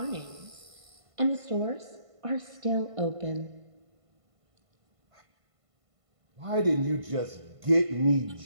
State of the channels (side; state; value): left; late; 1.5 ms